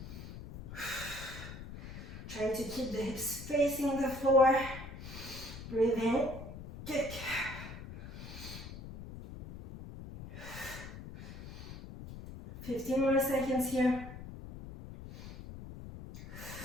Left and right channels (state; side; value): noise; left; rumble, 11 dB below the sound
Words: Trying to keep the hips facing the floor, breathe in. Kick. 15 more seconds here.